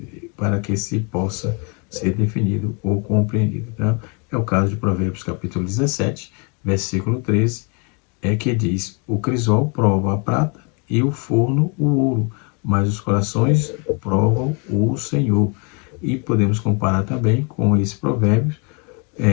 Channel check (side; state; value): right; quieter; 34.2 dB